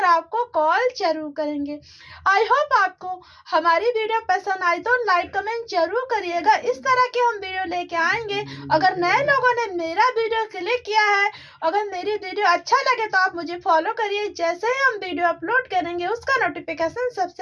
आपको कॉल जरूर करेंगे। आई होप आपको हमारी वीडियो पसंद आई तो लाइक कमेंट जरूर करिएगा। इस तरह के हम वीडियो लेके आएंगे। अगर नए लोगों ने मेरा वीडियो क्लिक किया है, अगर मेरी वीडियो अच्छा लगे तो आप मुझे फॉलो करिए, जैसे ही हम वीडियो अपलोड करेंगे उसका नोटिफिकेशन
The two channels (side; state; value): both; identical; correlation 1.00